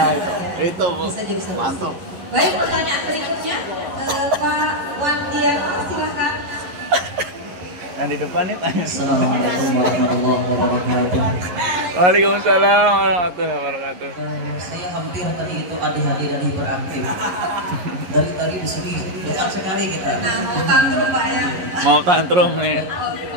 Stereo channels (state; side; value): late; left; 11 ms